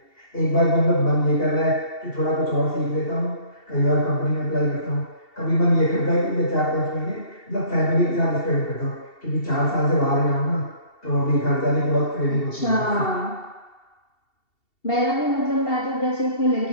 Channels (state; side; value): late; right; 2.7 ms